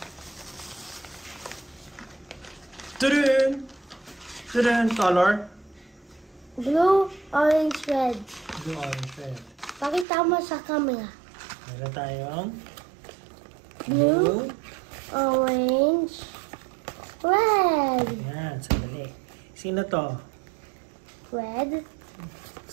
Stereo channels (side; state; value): left; drops out; at 10.1 s